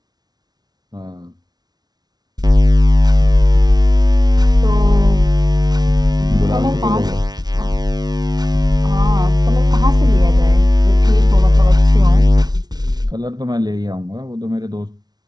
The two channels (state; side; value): late; left; 0.19 ms